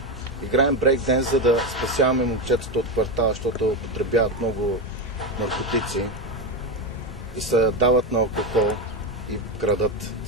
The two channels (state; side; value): normal; both; correlation 0.13